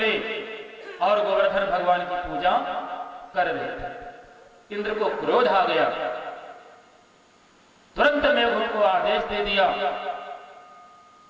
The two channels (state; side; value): identical; both; correlation 1.00